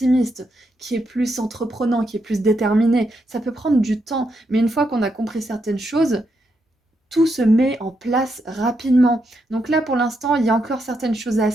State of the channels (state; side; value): normal; both; correlation 0.81